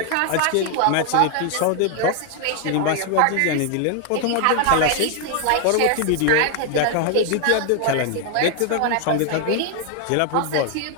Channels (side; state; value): both; different; correlation 0.00